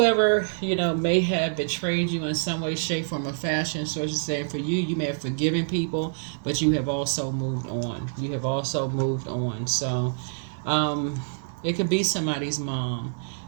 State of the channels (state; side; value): silent; left; 56 dB below the other